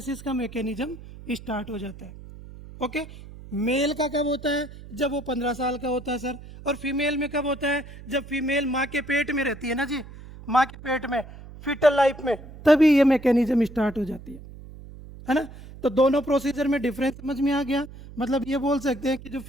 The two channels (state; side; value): noise; right; hum, 16 dB below the sound